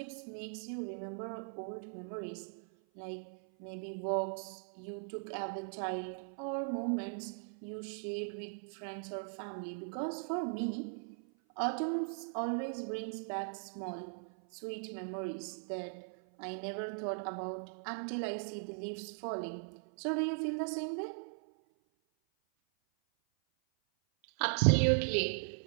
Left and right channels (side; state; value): left; silent; 52 dB below the other